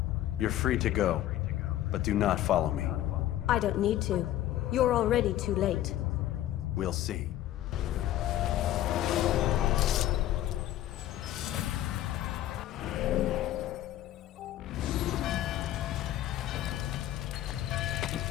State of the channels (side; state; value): right; quieter; 13.3 dB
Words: You're free to go, but do not follow me. I don't need to. You're already too late. We'll see.